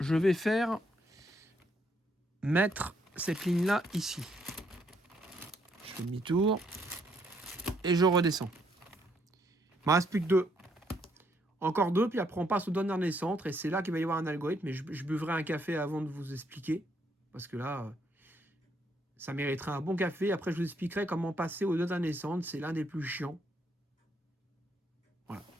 vais mettre cette ligne-là ici. Je fais demi-tour et je redescends. Il me reste plus que 2. Encore 2, puis après on passe au dernier centre et c'est là qu'il va y avoir un algorithme. Mais je buvrai un café avant de vous expliquer. Parce que là, ça mériterait un bon café. Après, je vous expliquerai comment passer au dernier centre. C'est l'un des plus chiants. Voilà.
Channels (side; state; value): both; normal; correlation 0.72